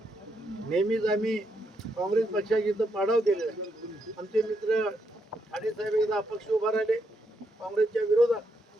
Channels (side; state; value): both; normal; correlation 0.79